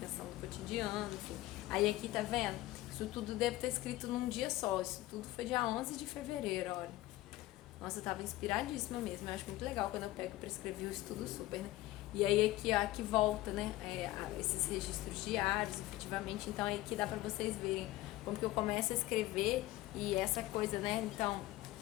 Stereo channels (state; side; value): quieter; right; 16.9 dB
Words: do cotidiano, enfim. Aí aqui, tá vendo? Isso tudo deve ter escrito num dia só. Isso tudo foi dia 11 de fevereiro, olha. Nossa, eu tava inspiradíssima mesmo. Eu acho muito legal quando eu pego pra escrever o estudo super, né? E aí aqui, ó, aqui volta, né? Esses registros diários, efetivamente. Então aí aqui dá pra vocês verem como que eu começo a escrever e essa coisa, né? Então,